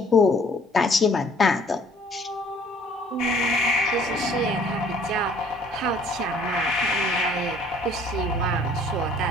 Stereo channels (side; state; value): both; normal; correlation 0.57